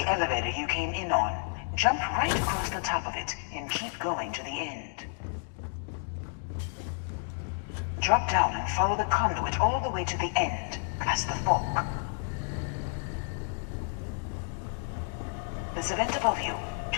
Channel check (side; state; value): right; silent; 57 dB below the other